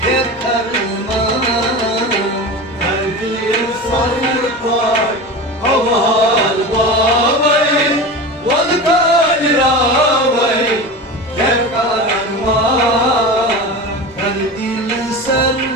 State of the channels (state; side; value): normal; both; correlation 0.29